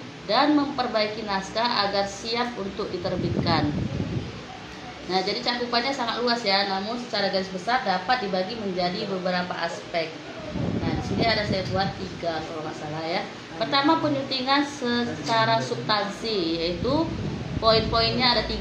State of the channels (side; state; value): both; identical; correlation 1.00